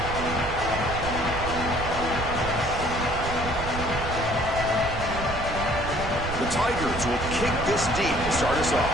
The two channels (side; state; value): right; noise; rumble, 7 dB below the sound